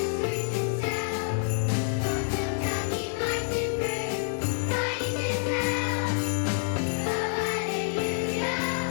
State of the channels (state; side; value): silent; right; digital silence